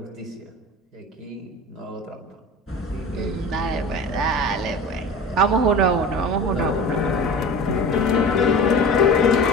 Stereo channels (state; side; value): normal; both; correlation 0.35